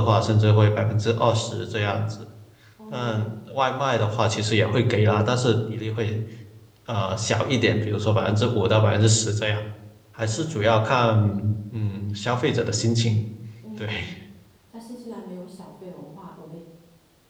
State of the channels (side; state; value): both; identical; correlation 1.00